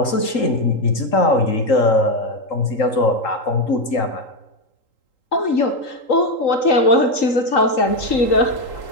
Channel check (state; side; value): late; right; 3.8 ms